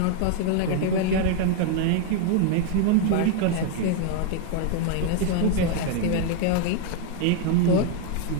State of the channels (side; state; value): both; different; correlation 0.00